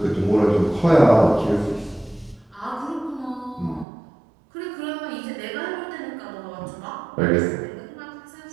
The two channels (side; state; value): left; drops out; at 3.9 s